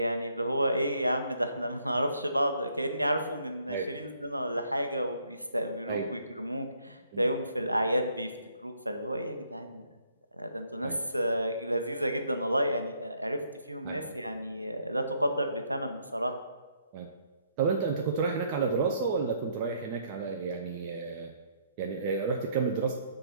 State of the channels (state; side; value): inverted; both; correlation -0.69